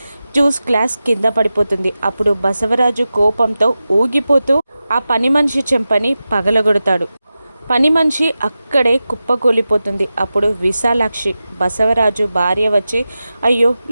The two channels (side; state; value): both; inverted; correlation -0.93